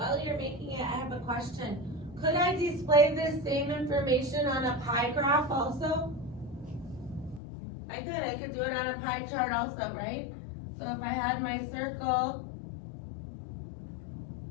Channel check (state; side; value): drops out; right; at 7.4 s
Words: you're making it, I have a question. Could I display this same information on a pie graph also? I could do it on a pie chart also, right? So if I had my circle